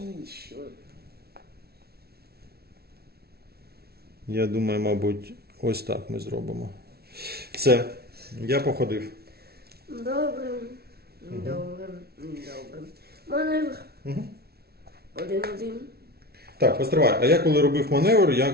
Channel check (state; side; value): late; left; 0.45 ms